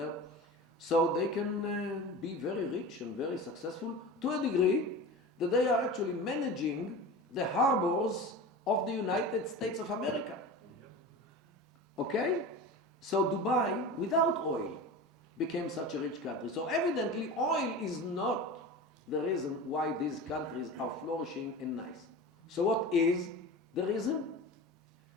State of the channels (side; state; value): both; normal; correlation 0.31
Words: So they can be very rich and very successful to a degree that they are actually managing the harbors of the United States of America. Okay? So Dubai, without oil, became such a rich country. So evidently oil is not the reason why these countries are flourishing and nice. So what is the reason?